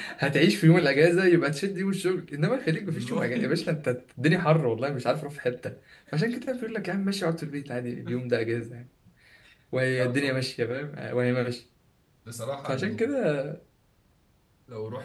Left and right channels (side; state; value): both; identical; correlation 1.00